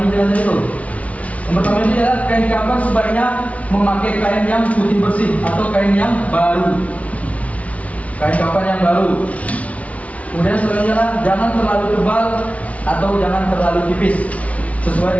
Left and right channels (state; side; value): late; right; 0.066 ms